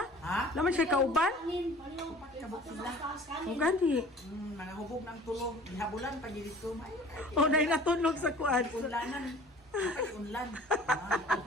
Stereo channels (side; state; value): both; normal; correlation 0.46